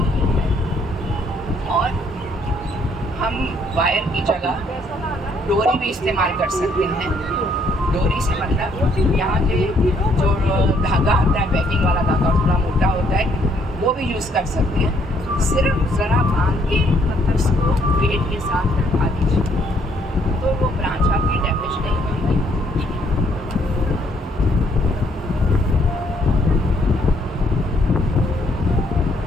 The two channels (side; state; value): both; normal; correlation 0.68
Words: है। और हम वायर की जगह डोरी भी इस्तेमाल कर सकते हैं। डोरी से मतलब यहाँ के जो धागा आता है, पैकिंग वाला धागा थोड़ा मोटा होता है, वो भी यूज़ कर सकते हैं। सिर्फ ज़रा बांध के उसको वेट के साथ रखा दीजिए, तो वो ब्रांच आपकी डैमेज नहीं होगी।